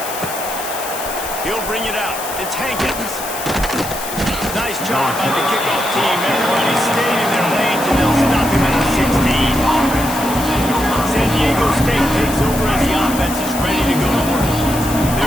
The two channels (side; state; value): left; noise; hiss, 9 dB below the sound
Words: He'll bring it out. It's Hankins. Nice job by the kickoff team. Everybody stayed in their lanes, and they'll